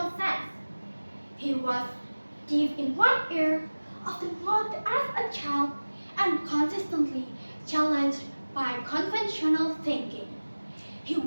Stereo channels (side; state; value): both; inverted; correlation -1.00